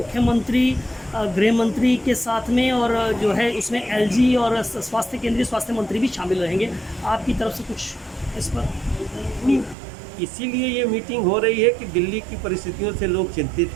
गृह मंत्री के साथ में, और जो है उसमें एलजी और केंद्रीय स्वास्थ्य मंत्री भी शामिल रहेंगे। आपकी तरफ से कुछ इस पर? नहीं, इसीलिए ये मीटिंग हो रही है कि दिल्ली की परिस्थितियों से लोग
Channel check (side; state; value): left; drops out; at 9.8 s